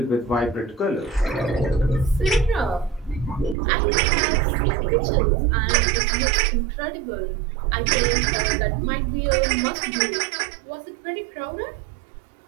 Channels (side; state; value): left; drops out; at 3.6 s